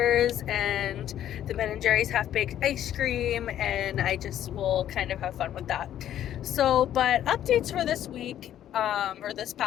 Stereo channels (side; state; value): right; quieter; 11.3 dB